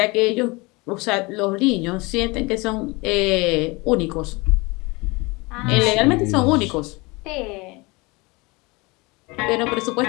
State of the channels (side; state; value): right; quieter; 25.3 dB